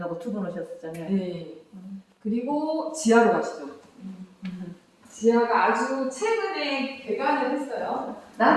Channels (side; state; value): both; identical; correlation 1.00